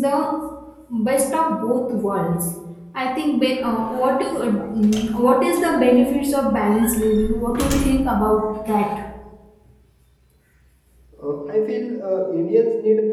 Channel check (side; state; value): both; identical; correlation 1.00